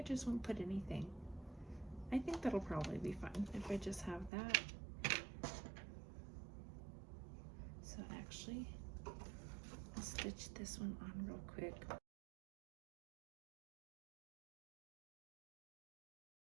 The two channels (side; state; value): left; drops out; at 4.3 s